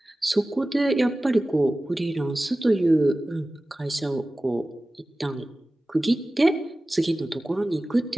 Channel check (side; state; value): both; normal; correlation 0.96